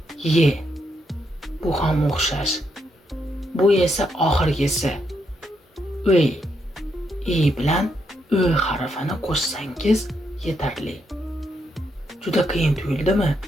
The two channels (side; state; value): both; normal; correlation 0.79